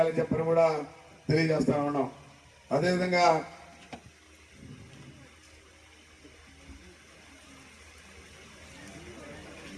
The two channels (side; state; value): both; identical; correlation 1.00